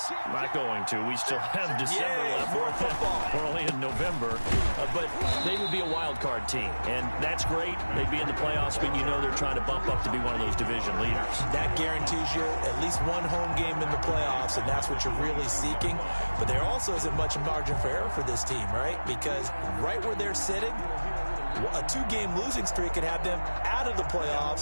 not going to, we still have December left. More football. We're only in November. But they would be a wild card team, and that's great. They'd be in the playoffs, but they're trying to bump up to be one of those division leaders. That guarantees you at least one home game in the playoffs, and that's what you're really seeking. But there also isn't much margin for error for this team, right? Because right where they're sitting, a 2-game losing streak could have them out of the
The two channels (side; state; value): both; inverted; correlation -1.00